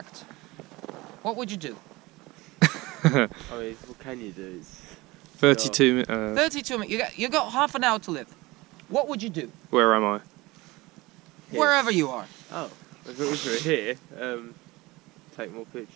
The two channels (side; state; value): left; quieter; 21.4 dB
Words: what would you do? I mean, what can you do? 32 minutes. 32 minutes. You got half an hour to live. What would you do? Where am I? Here. Wherever you are. Oh, if it was here, take more